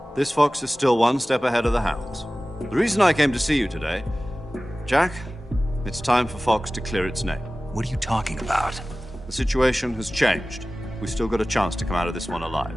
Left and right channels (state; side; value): normal; both; correlation 0.97